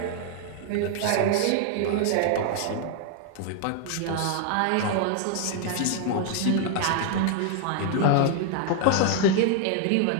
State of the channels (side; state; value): both; different; correlation 0.00